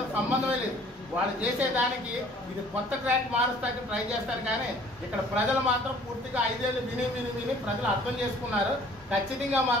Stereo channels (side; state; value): both; normal; correlation 0.54